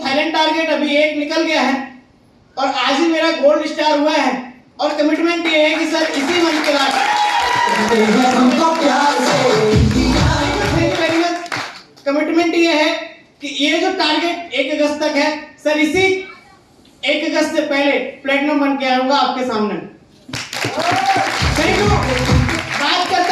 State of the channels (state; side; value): identical; both; correlation 1.00